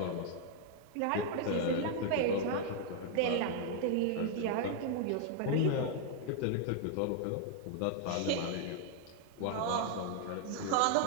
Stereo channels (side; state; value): both; different; correlation 0.00